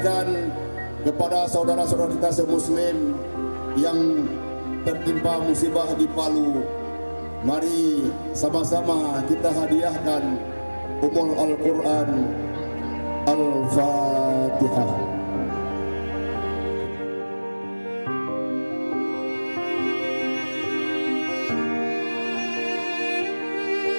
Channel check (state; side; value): inverted; both; correlation -1.00